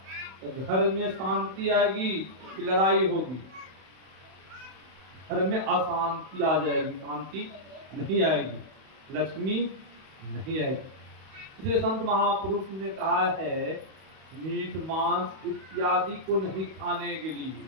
तो घर में शांति आएगी कि लड़ाई होगी, घर में अशांति आ जाएगी, शांति नहीं आएगी, लक्ष्मी नहीं आएगी। इसलिए संत महापुरुष ने कहा है, मीट मांस इत्यादि को नहीं खाने के लिए।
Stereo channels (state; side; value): late; left; 31 ms